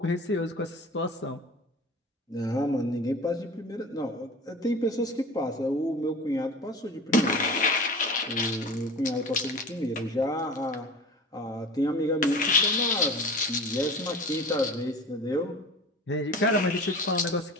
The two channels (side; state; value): both; normal; correlation 0.37